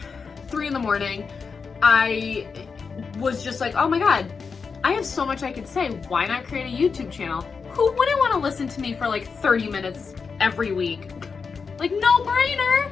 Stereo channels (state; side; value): quieter; right; 5.3 dB